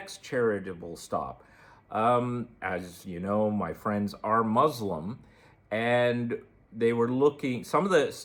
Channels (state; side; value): identical; both; correlation 1.00